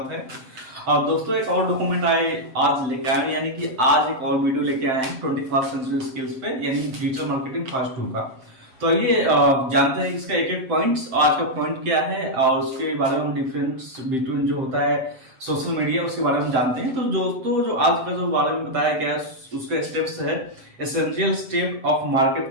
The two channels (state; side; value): late; left; 7.7 ms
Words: है। और दोस्तों एक और डॉक्यूमेंट आज लेके आए, यानी कि आज एक और वीडियो लेके आए हैं 21st सेंचुरी स्किल्स पे, यानी डिजिटल मार्केटिंग फास्ट 2 का। तो ये जानते हैं इसका एक एक पॉइंट्स, आज का पॉइंट क्या है और उसके बारे में हम डिफरेंस बिटवीन जो होता है सोशल मीडिया उसके बारे में हम जानते हैं। तो दोस्तों जो आज का जो बारे में बताया गया है उसका स्टेप्स है essential step of